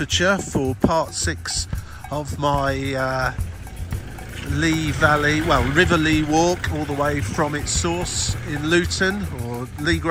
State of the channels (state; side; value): identical; both; correlation 1.00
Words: for part 6 of my River Lea walk, all the way from its source in Luton, or